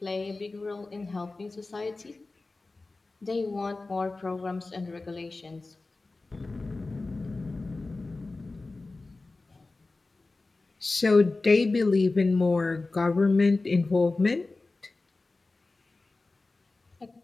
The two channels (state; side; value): quieter; right; 3.4 dB